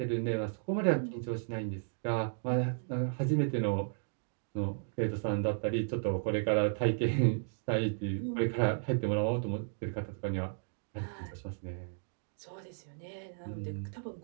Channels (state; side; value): silent; left; digital silence